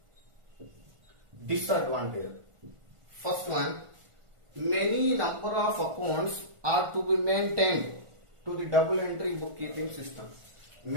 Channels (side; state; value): left; late; 1.4 ms